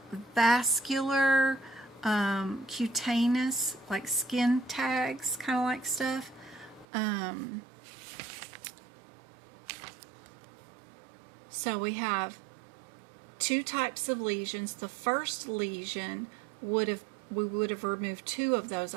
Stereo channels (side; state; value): left; drops out; at 6.9 s